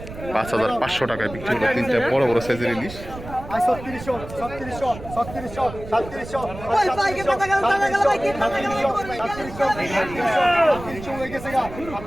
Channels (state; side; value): noise; right; rumble, 13 dB below the sound